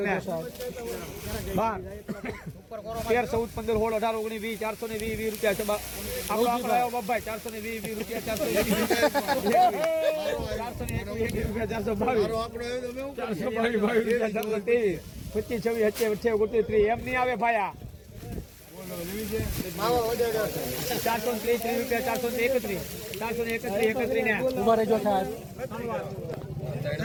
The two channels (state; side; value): identical; both; correlation 1.00